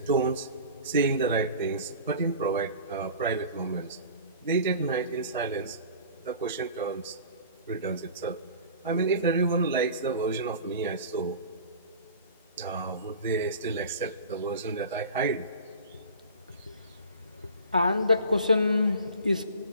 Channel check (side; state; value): both; inverted; correlation -0.40